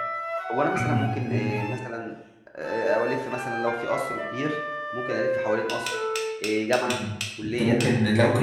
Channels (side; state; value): both; identical; correlation 1.00